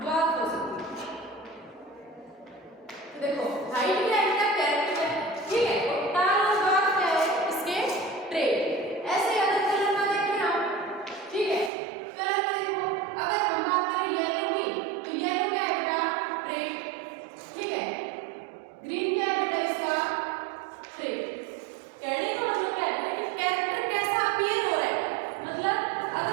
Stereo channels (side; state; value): left; drops out; at 11.7 s